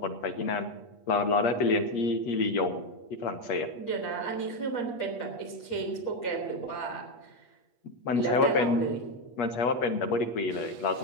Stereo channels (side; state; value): right; late; 8.4 ms